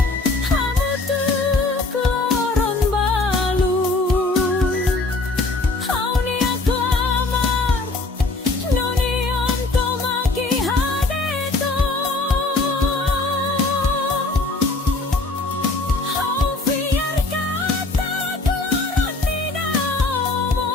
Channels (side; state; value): right; quieter; 3.2 dB